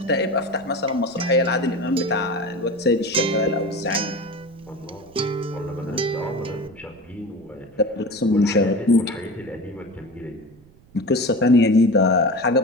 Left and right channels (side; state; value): right; noise; rumble, 27 dB below the sound